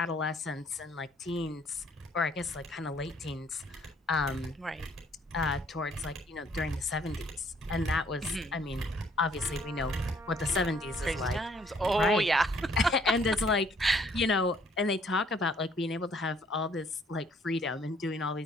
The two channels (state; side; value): normal; both; correlation 0.63